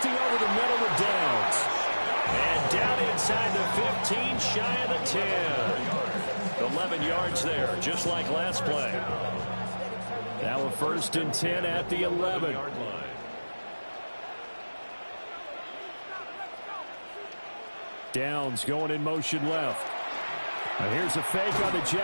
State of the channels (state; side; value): inverted; both; correlation -1.00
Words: over the middle with Downs. And down inside the 15, shy of the 10. 11 yards there, just like last play. Now a 1st and 10 at the 11. Downs going in motion left. Now here's a fake on the